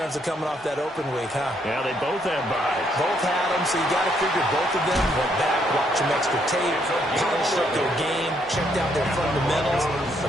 of coming off that open week, huh? Yeah, they both have byes. Both had them, so you got to figure both of them went back, watched some extra tape, polished up their game, checked out their fundamentals,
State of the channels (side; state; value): both; normal; correlation 0.72